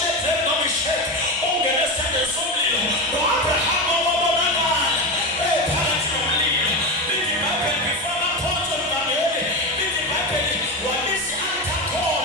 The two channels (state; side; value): normal; both; correlation 0.18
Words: noMeshaki ungene esithandweni somlilo. No-Abraham wabonakala phakathi nomlilo. Lithi iBhayibheli before baphonswe lukameli, lithi iBhayibheli wabisa